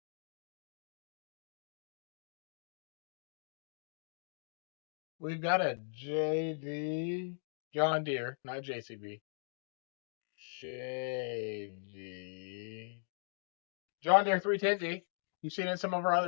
We've got a JD John Deere, not JCB. JD. John Deere 310G. You've seen it in some of our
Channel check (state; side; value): silent; right; digital silence